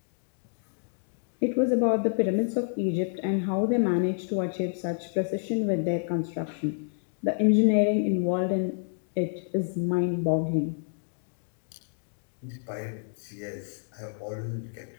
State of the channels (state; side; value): silent; right; digital silence